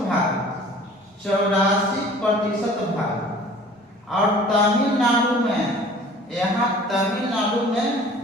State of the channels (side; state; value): both; normal; correlation 0.48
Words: भाग? 84% भाग। और तमिलनाडु में, यहाँ तमिलनाडु में